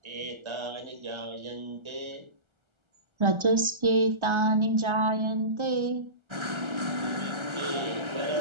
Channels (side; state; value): left; late; 1.3 ms